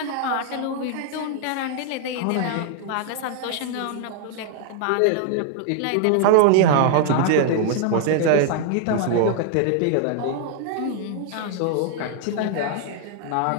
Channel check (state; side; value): different; both; correlation 0.00